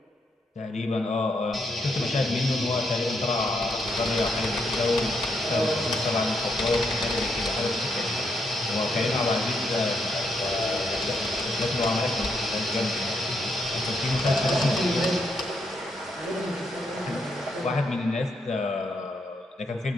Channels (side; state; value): both; normal; correlation 0.78